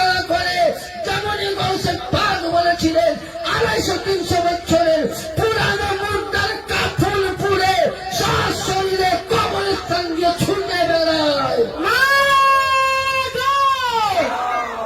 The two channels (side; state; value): both; identical; correlation 1.00